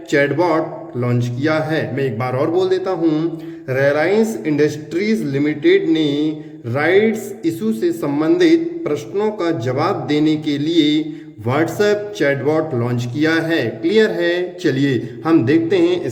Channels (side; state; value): both; identical; correlation 1.00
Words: चैटबॉट लॉन्च किया है। मैं एक बार और बोल देता हूं। रिलायंस इंडस्ट्रीज लिमिटेड ने राइट्स इशू से संबंधित प्रश्नों का जवाब देने के लिए व्हाट्सएप चैटबॉट लॉन्च किया है। क्लियर है? चलिए हम देखते हैं